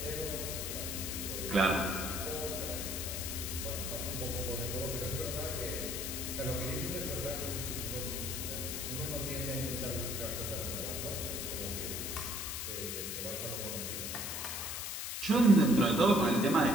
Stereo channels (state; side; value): noise; left; hiss, 4 dB below the sound